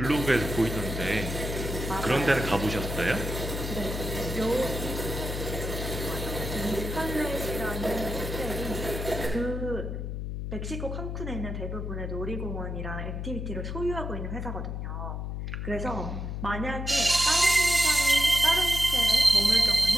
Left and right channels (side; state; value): left; noise; hum, 5 dB below the sound